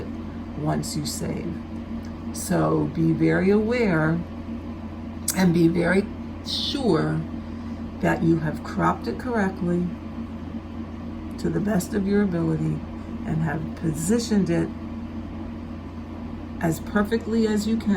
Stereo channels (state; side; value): identical; both; correlation 1.00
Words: once you save. So be very aware and be very sure that you have cropped it correctly to the best of your ability and have positioned it as perfectly as you